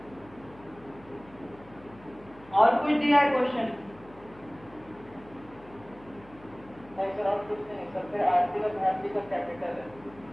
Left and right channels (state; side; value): noise; left; hum, 23 dB below the sound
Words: और कुछ दिया है क्वेश्चन? नहीं सर और कुछ नहीं सर। फिर आरती और भारती का कैपिटल है।